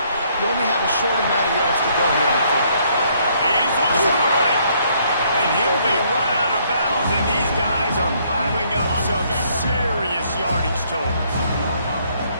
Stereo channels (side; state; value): both; inverted; correlation -0.67